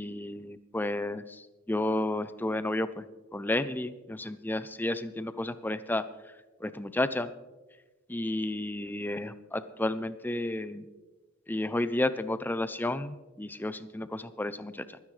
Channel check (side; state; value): both; normal; correlation 0.80